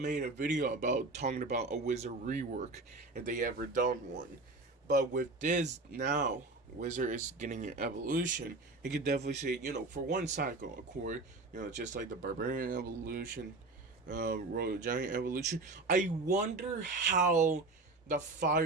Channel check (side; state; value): left; quieter; 3.3 dB